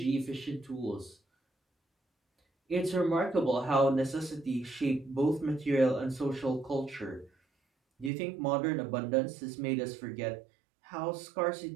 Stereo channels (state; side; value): drops out; left; at 8.1 s